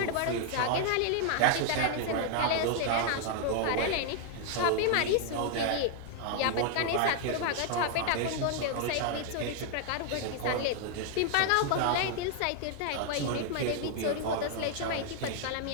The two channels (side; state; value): both; different; correlation 0.00